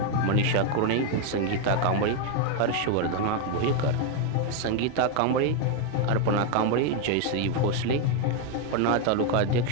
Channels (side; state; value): both; different; correlation 0.01